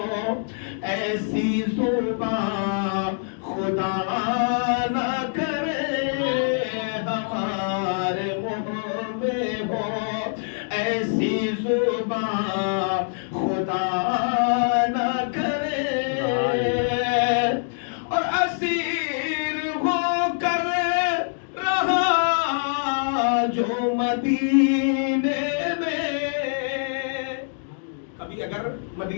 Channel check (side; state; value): right; silent; digital silence